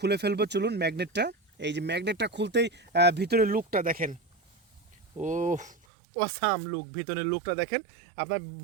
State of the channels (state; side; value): drops out; left; at 5.8 s